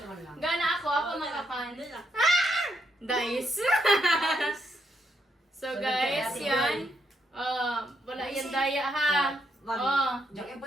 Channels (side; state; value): both; normal; correlation 0.77